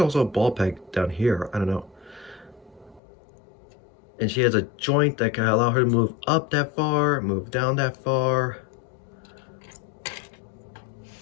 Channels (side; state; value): right; drops out; at 3.0 s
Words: a ball peg down here. I don't know. And she has a joint that can allow her to move up that far, move down that far.